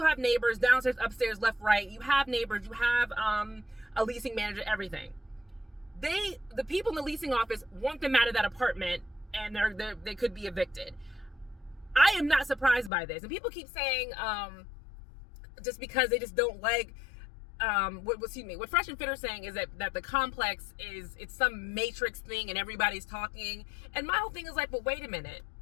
have neighbors downstairs, upstairs, left, right. You have neighbors. You have a leasing manager, everything. The people in the leasing office want them out of that apartment, and they could be evicted. I am not surprised by this. And people keep saying, just because they just don't like, what Fresh and Fit are saying is that the complex it's some matrix thing and everybody's talking. And my whole thing is like, but wait a minute.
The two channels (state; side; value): drops out; right; at 12.9 s